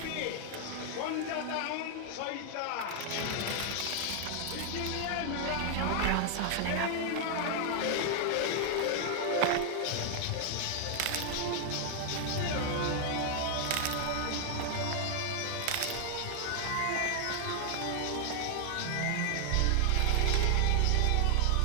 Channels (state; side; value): different; both; correlation 0.00